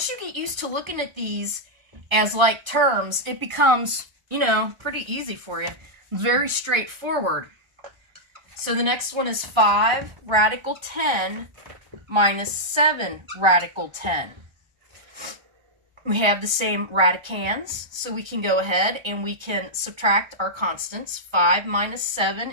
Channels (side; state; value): left; late; 1.3 ms